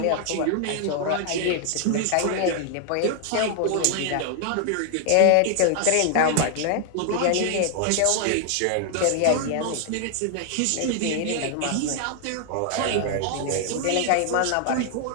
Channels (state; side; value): different; both; correlation 0.00